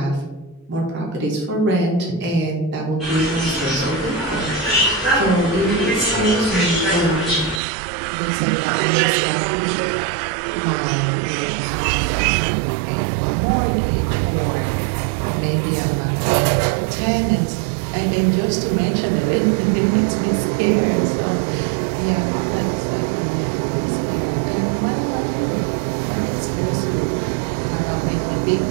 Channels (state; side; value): drops out; left; at 7.6 s